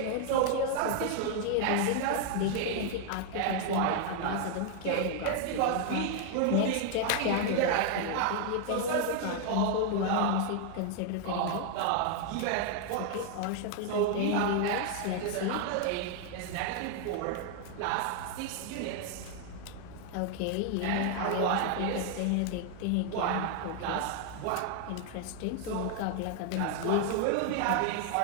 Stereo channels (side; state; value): both; different; correlation 0.00